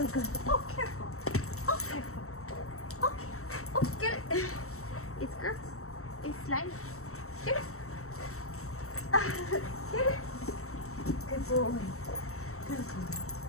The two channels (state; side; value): late; right; 0.63 ms